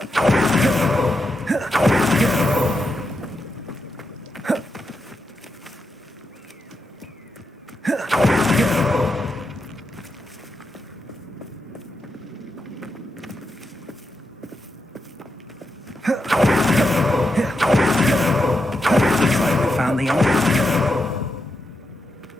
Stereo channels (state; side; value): normal; both; correlation 0.86